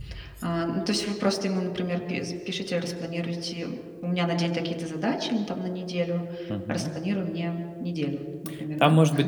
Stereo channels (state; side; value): identical; both; correlation 1.00